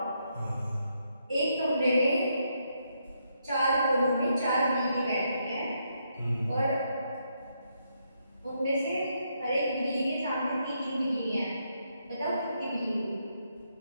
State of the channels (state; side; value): inverted; both; correlation -0.78